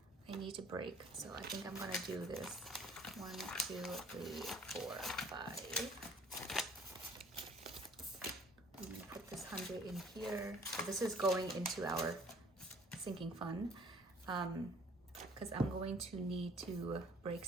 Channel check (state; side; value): normal; both; correlation 0.56